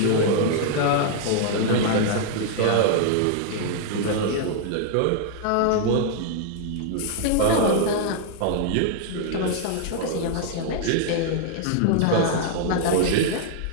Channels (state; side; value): different; both; correlation 0.00